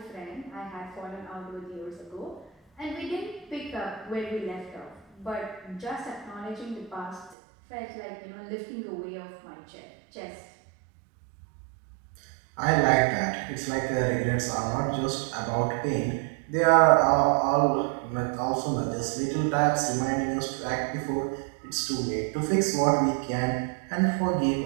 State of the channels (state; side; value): drops out; left; at 7.4 s